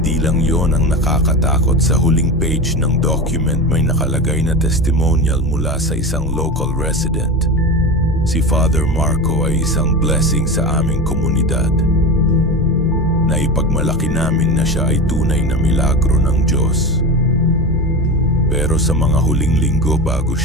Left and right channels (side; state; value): both; normal; correlation 0.25